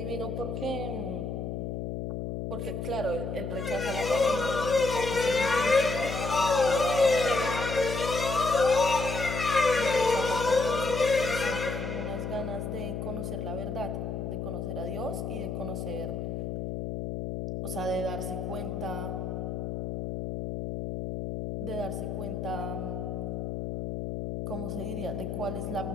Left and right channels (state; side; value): noise; left; hum, 4 dB below the sound